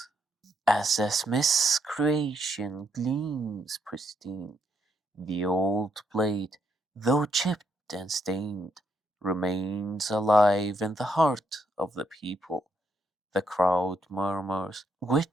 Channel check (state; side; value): normal; both; correlation 0.75